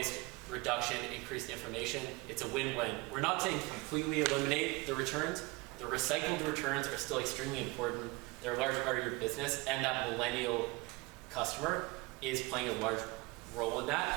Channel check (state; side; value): quieter; left; 24.1 dB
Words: reduction, increased information, it's a win-win. We're not saying completely eliminate the returns. The recycled returns are still extremely important. They're a large part of your business, and that millennial customer is playing a large role in that,